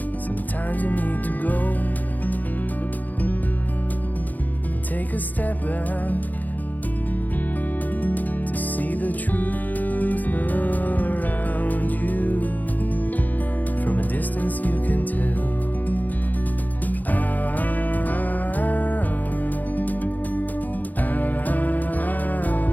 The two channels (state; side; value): late; right; 0.082 ms